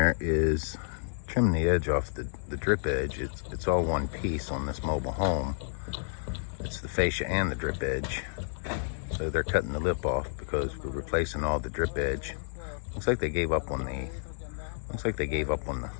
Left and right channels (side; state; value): right; silent; digital silence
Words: is trimming the edge off the drip edge. It's all one piece on this mobile home. It's the fascia and the drip edge. So they're cutting the lip off because we're replacing all the drip edge. Looks like they gave up on the